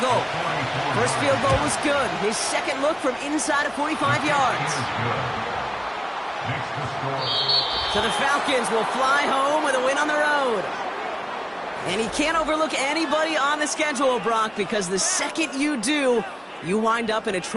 First field goal was good. His second look from inside of 45 yards. So the Falcons will fly home with a win on the road. And he can't overlook anybody on the schedule, Brock, because the second you do, you wind up in a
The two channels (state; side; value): identical; both; correlation 1.00